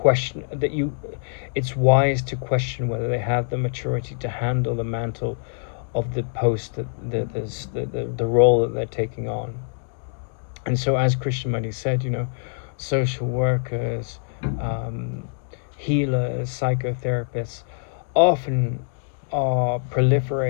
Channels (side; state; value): right; silent; digital silence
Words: that it's wise to question whether they have the maturity to handle the mantle of the post, the role that they're taking on. And so, as Krishnamurti said, social workers, healers, psychotherapists often are